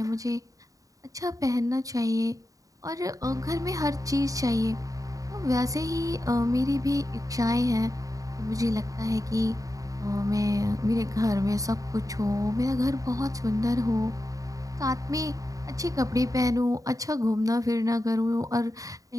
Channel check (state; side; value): late; left; 0.16 ms